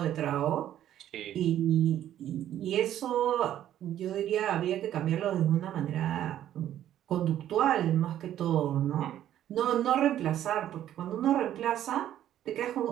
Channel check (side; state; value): left; quieter; 11.6 dB